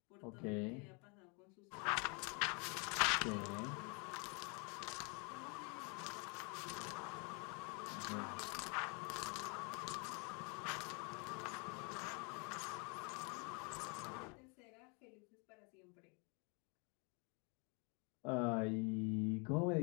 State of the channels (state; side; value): quieter; right; 33.5 dB